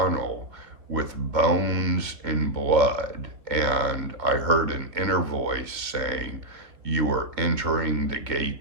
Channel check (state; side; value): late; left; 2.2 ms